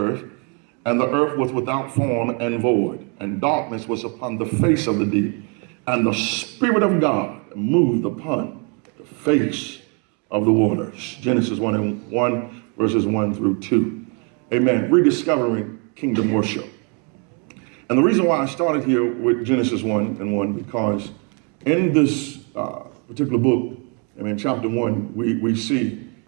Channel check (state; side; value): quieter; left; 36.4 dB